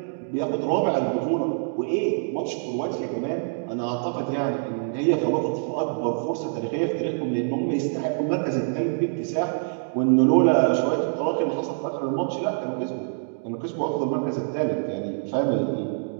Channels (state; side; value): silent; left; digital silence